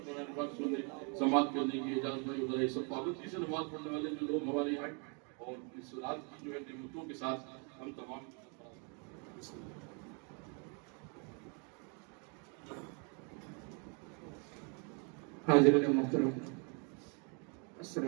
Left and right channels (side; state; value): left; quieter; 37.1 dB